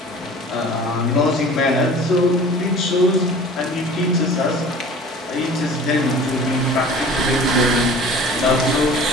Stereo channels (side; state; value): both; normal; correlation 0.43